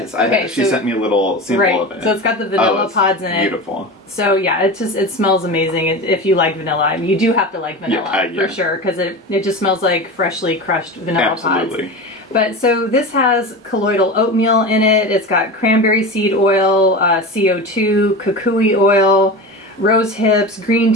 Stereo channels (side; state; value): both; normal; correlation 0.28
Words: she sent me a little sample of it. So it's got the vanilla pods in it. Beautiful. So yeah, it smells amazing. If you like vanilla, you do have to like vanilla for sure, because it just smells like freshly crushed vanilla pods. But so this has colloidal oatmeal in it. It's got cranberry seed oil, CO2, kukui oil, rose hips, green